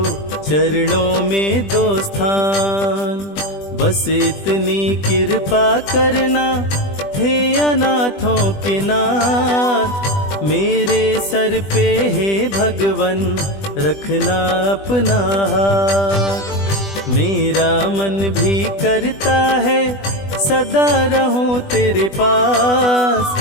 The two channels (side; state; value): right; late; 20 ms